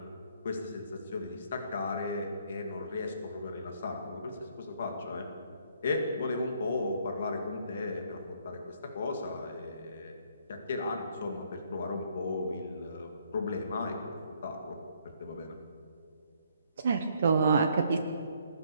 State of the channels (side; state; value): both; inverted; correlation -0.67